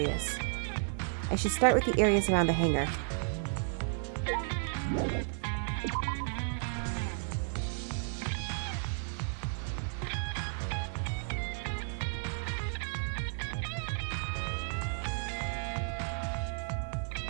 I should start with the areas around the hangar.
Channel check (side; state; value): left; silent; digital silence